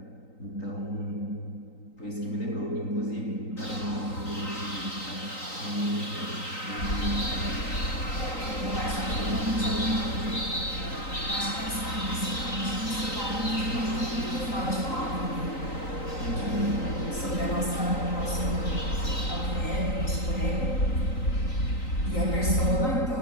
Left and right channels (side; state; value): right; late; 3.9 ms